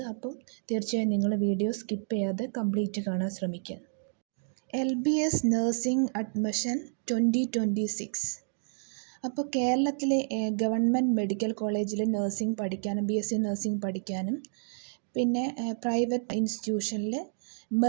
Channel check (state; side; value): silent; left; digital silence